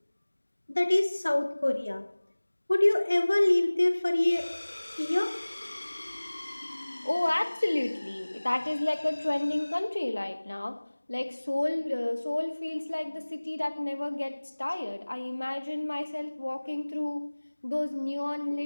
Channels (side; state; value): both; inverted; correlation -1.00